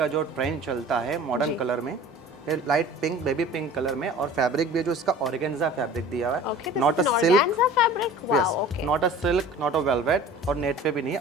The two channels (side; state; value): both; normal; correlation 0.42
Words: जो ट्रेंड चलता है मॉडर्न कलर में, ये light pink, baby pink colour में, और फैब्रिक भी जो इसका ऑर्गेन्जा फैब्रिक दिया हुआ है, not a silk, not a silk, not a velvet, और नेट पे भी नहीं है,